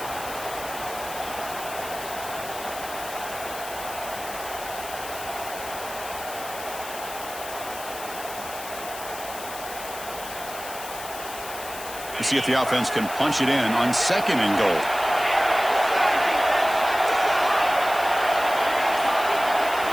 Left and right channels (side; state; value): left; noise; hiss, 11 dB below the sound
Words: We'll see if the offense can punch it in on 2nd and goal.